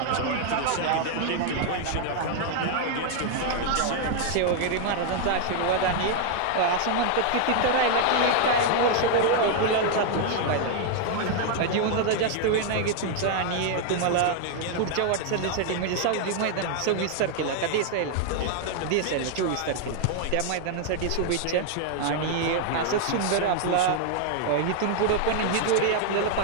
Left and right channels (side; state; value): both; different; correlation 0.00